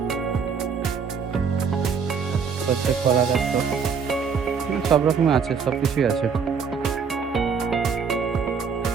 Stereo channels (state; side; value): quieter; left; 6.0 dB